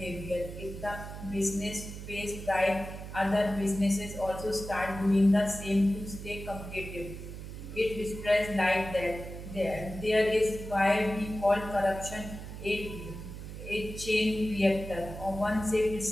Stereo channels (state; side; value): noise; right; hum, 10 dB below the sound